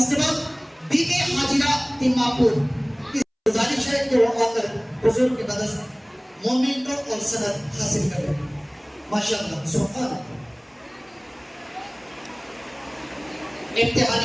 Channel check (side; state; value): both; identical; correlation 1.00